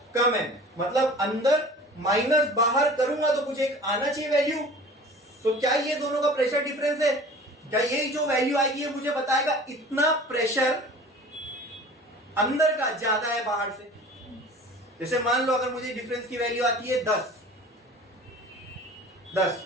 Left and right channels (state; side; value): normal; both; correlation 0.43